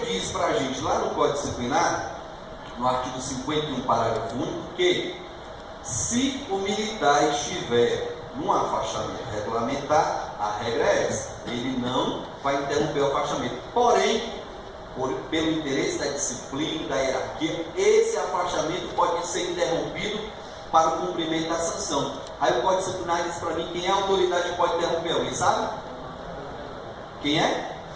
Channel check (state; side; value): identical; both; correlation 1.00